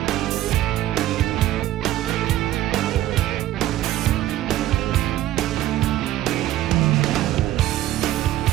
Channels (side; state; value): left; quieter; 14.0 dB